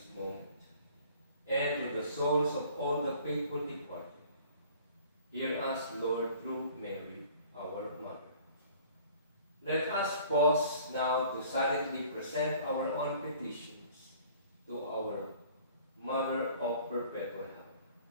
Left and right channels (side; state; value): both; inverted; correlation -0.51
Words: moment, and to the souls of all the faithful departed. Hear us, Lord, through Mary, our Mother. Let us pause now to silently present our own petitions to our Mother of Perpetual Help.